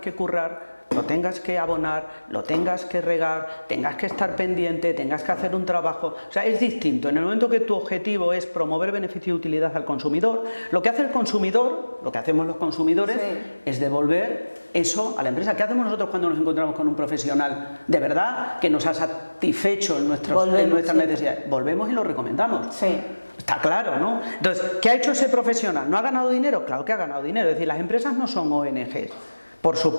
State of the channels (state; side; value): inverted; both; correlation -1.00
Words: currar, lo tengas que abonar, lo tengas que regar, tengas que estar pendiente, tengas que hacer un trabajo. O sea, es distinto. En el momento que tu objetivo es promover beneficio y utilidad al consumidor, lo que hace el consumidor, lo que hacemos los consumidores, es devolver eso a la empresa. ¿Qué hacemos nosotros cuando nos encontramos con un profesional de verdad que nos ha satisfecho en nuestras necesidades? Volvemos y lo recomendamos. Sí. Está claro, ¿no? Entonces, ¿qué ha hecho ese profesional? ¿No ha ganado dinero? Claro que ha ganado dinero. Es decir, las empresas no son ONGs. Por